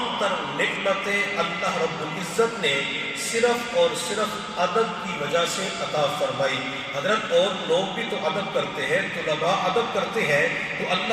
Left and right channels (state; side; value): identical; both; correlation 1.00